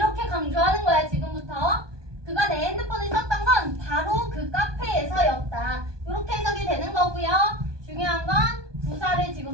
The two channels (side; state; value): left; late; 1.2 ms